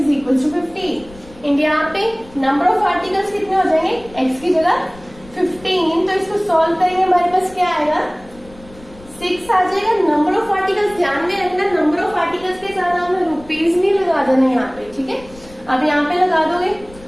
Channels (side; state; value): left; noise; rumble, 22 dB below the sound